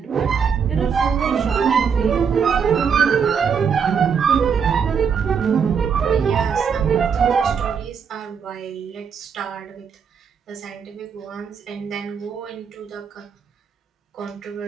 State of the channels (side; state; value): left; quieter; 6.7 dB